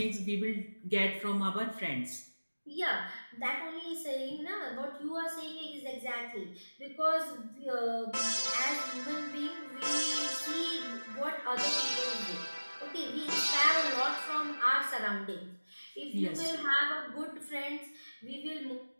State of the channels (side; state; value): both; inverted; correlation -1.00